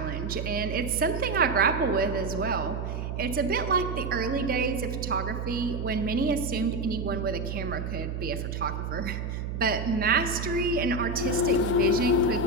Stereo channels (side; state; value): right; noise; hum, 4 dB below the sound